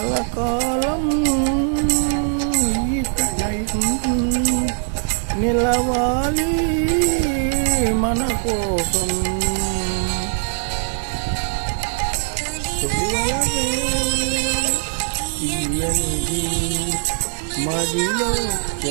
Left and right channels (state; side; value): silent; left; digital silence